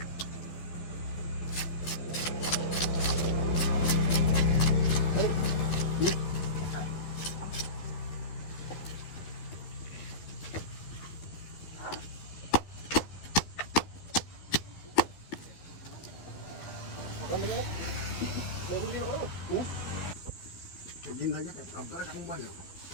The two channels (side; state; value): right; late; 13 ms